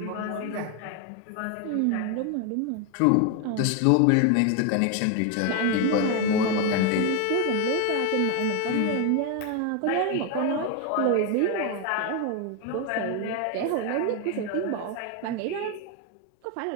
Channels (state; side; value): different; both; correlation 0.01